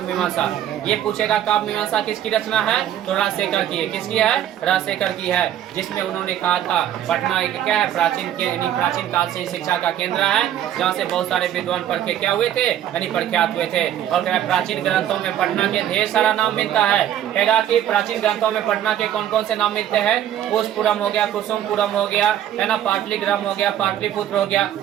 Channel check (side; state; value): left; quieter; 11.1 dB